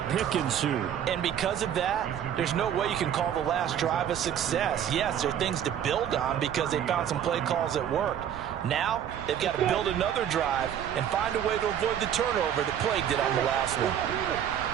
pick ensued. And because of that, there's no way you can call the last drive a success. Yes, there are things to build on because they found some play calls that worked. Now, they've got to build another drive and find a way to avoid the turnover that plagued it on the last one.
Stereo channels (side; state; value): left; quieter; 9.6 dB